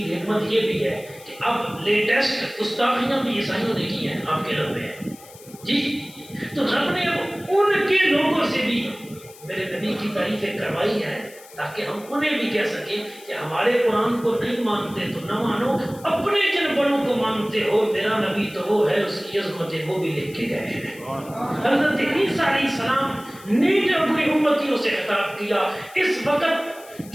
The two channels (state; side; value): noise; left; hiss, 21 dB below the sound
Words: حکمت یہ بھی ہے کہ اب لیٹسٹ گستاخیاں بھی عیسائیوں نے کی ہیں آپ کے رب میں جی، تو رب نے اب ان کے لوگوں سے بھی میرے نبی کی تعریفیں کروائی ہیں تاکہ ہم انہیں بھی کہہ سکیں کہ ہمارے قرآن کو نہیں مانتے تو نہ مانو، اپنے جن بڑوں کو مانتے ہو، میرا نبی تو وہ ہے، اس کی عظمتیں وہ بھی لکھ کے گئے ہیں۔ حضرت عیسیٰ علیہ السلام نے جب اپنی امتیوں سے خطاب کیا، اس وقت